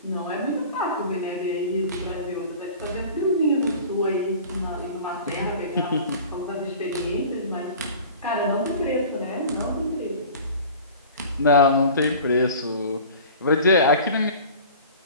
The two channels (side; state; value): both; inverted; correlation -0.42